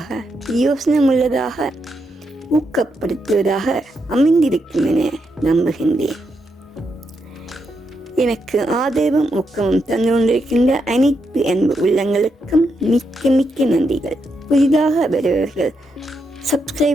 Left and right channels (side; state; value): both; normal; correlation 0.82